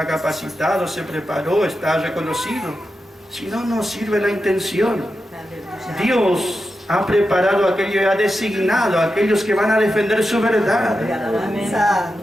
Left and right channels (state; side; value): normal; both; correlation 0.89